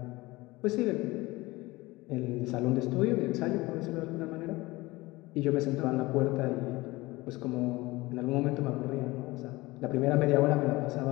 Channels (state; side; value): quieter; right; 20.8 dB